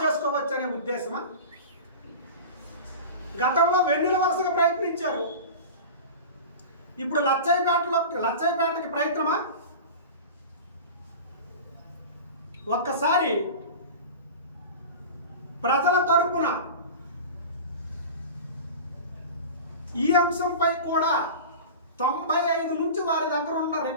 చేసుకోవచ్చు అనే ఉద్దేశమా? గతంలో వెన్నెల వరుసగా ప్రయత్నించారు, ఇప్పుడు లచ్చయ్యపేటకి ప్రయత్నమా? ఒక్కసారి ప్రజల తరపున ఈ అంశంపై కూడా 95 నుంచి వారి దగ్గర ఉన్న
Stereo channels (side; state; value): both; inverted; correlation -0.32